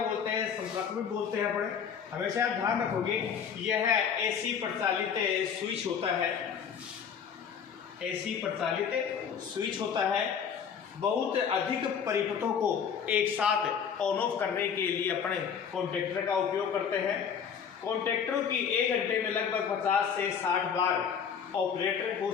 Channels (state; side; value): quieter; right; 7.3 dB